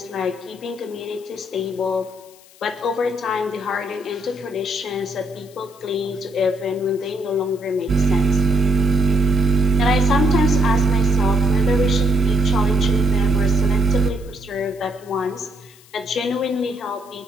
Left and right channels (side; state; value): left; noise; hiss, 25 dB below the sound